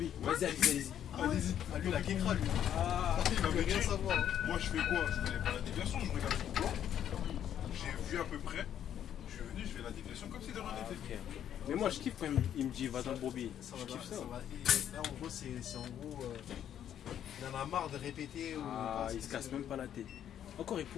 Vas-y, allez-y. Allez-y. Ah lui la kékra lui. Ah, Il veut rien savoir. Hein. Moi je fais quoi? Je connais pas la déviation, je regarde sur le plan. J'ai vu à peu près. Je suis venu, je fais la déviation comme si de rien n'était. ok. Mais moi, je kiffe quand il me dit va dans le broubi. Ça Je va, kiffe ça. ça va. Et là en gros c'est en gros il en a marre de répéter. Ah, il se casse même pas la tête. Encore, il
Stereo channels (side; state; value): right; quieter; 10.0 dB